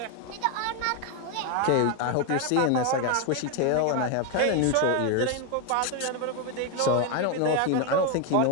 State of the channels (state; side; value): different; both; correlation 0.01